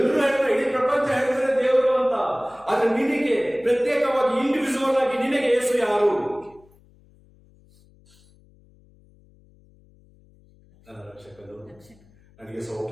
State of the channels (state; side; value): noise; left; hum, 29 dB below the sound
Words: ಹೇಳ್ತಾರೆ, ಇಡೀ ಪ್ರಪಂಚ ಹೇಳ್ತಾರೆ ದೇವರು ಅಂತ. ಆದ್ರೆ ನಿನಗೆ ಪ್ರತ್ಯೇಕವಾಗಿ ಇಂಡಿವಿಜುವಲ್ ಆಗಿ ನಿನಗೆ ಯೇಸು ಯಾರು? ನನ್ನ ರಕ್ಷಕನು, ನನಗೆ